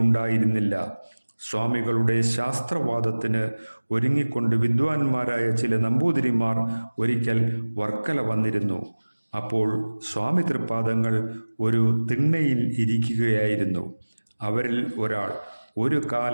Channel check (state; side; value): inverted; both; correlation -1.00